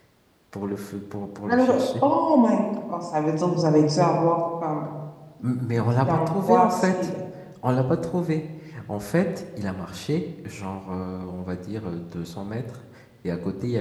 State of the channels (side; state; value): both; identical; correlation 1.00